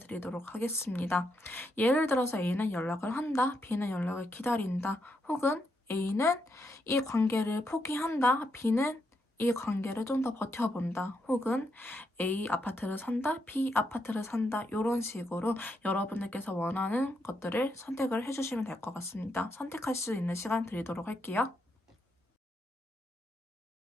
하겠습니다. 예를 들어서 A는 연락을 한다, B는 연락을 기다린다, 혹은 A는 이 관계를 포기한다, B는 이 관계를 좀 더 버텨본다, 혹은 A 아파트를 산다, B 아파트를 산다, 이런 식으로 여러분들께서 원하는 것들을 선택을 해주시면 될 것 같습니다. 선택할 수 있는 시간 드리도록 할게요.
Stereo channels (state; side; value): normal; both; correlation 0.80